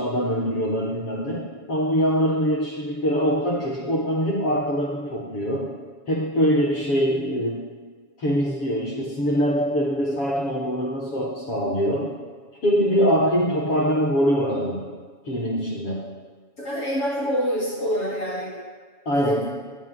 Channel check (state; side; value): late; right; 7.2 ms